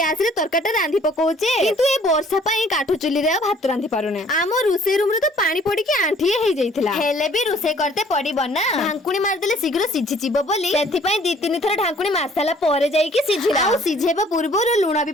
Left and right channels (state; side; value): normal; both; correlation 0.57